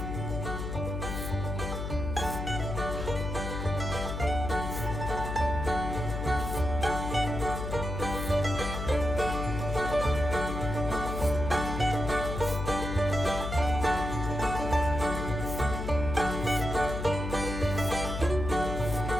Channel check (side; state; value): left; noise; hum, 4 dB below the sound